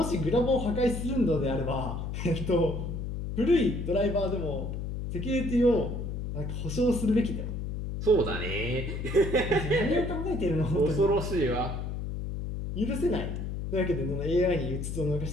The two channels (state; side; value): noise; left; hum, 4 dB below the sound